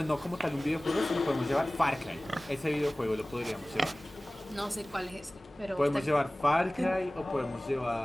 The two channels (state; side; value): normal; both; correlation 0.98